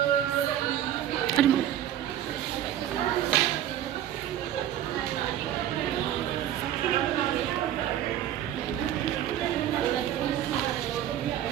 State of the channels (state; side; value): quieter; left; 11.4 dB